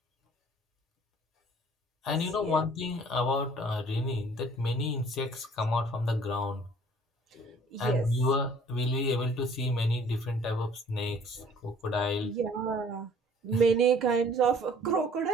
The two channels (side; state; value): both; normal; correlation 0.54